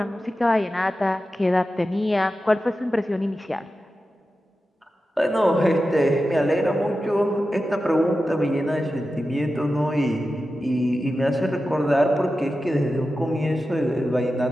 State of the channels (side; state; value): both; normal; correlation 0.92